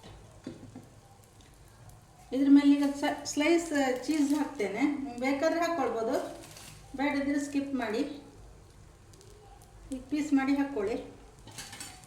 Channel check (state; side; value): identical; both; correlation 1.00